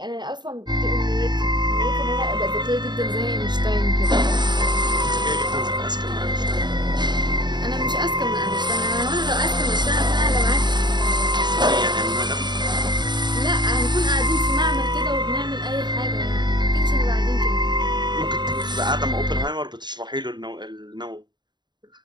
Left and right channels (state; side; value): late; left; 0.21 ms